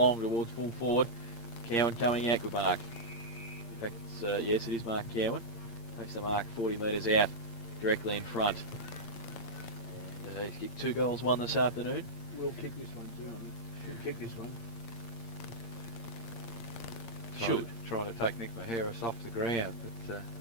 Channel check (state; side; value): late; right; 8.7 ms